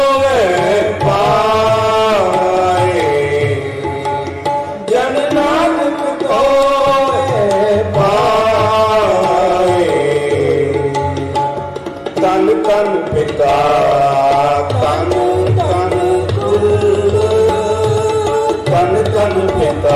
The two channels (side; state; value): both; identical; correlation 1.00